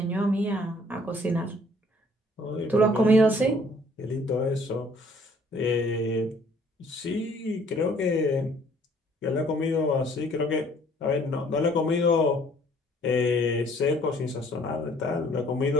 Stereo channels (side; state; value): both; normal; correlation 0.59